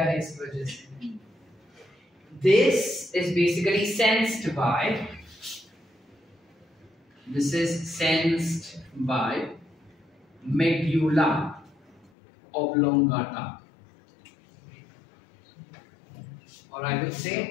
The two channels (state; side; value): drops out; right; at 12.1 s